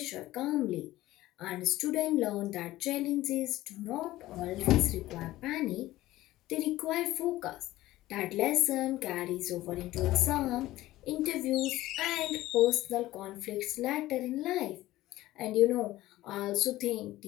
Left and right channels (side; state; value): right; quieter; 16.3 dB